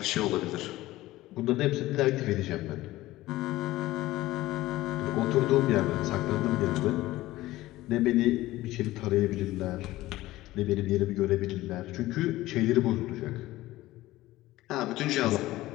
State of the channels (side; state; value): right; quieter; 17.0 dB